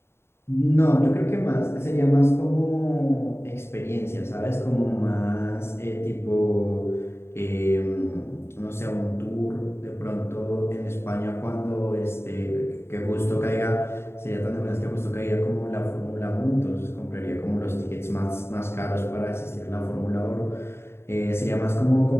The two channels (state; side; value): late; right; 0.12 ms